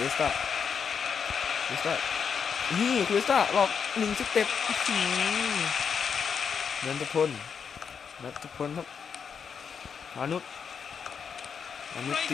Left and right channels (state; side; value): quieter; right; 6.6 dB